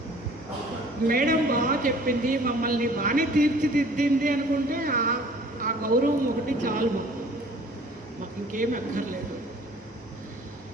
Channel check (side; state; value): both; normal; correlation 0.51